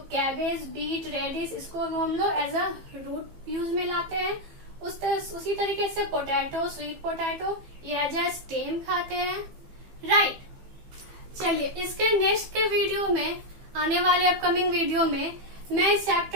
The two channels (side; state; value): left; late; 15 ms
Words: कैबेज, बीट, रेडिश, इसको हम लोग एज अ रूट यूज में लाते हैं। उसी तरीके से पोटैटो, स्वीट पोटैटो, ये एज अ स्टेम खाते हैं, राइट। चलिए इसके नेक्स्ट के वीडियो में, आने वाले अपकमिंग वीडियो में, मैं इस